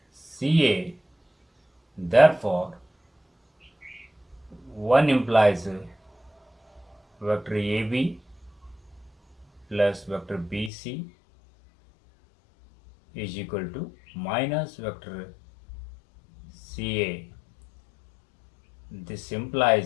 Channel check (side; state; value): right; drops out; at 10.7 s